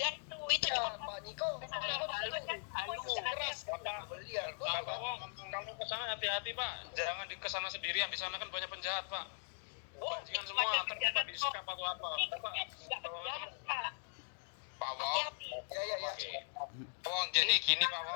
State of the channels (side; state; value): right; silent; digital silence